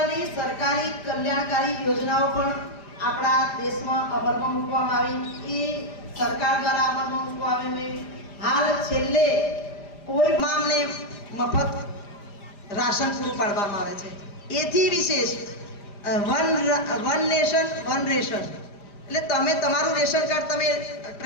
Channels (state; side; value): late; right; 5.0 ms